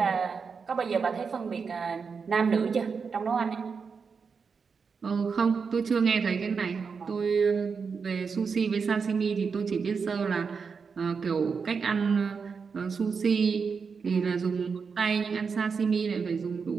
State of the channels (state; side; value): quieter; left; 5.5 dB